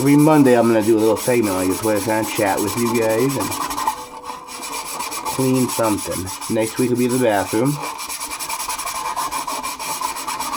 Monday I'm gonna do a little segment like this where I kind of chat with you guys and clean something. Next week will be the bathroom.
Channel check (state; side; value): identical; both; correlation 1.00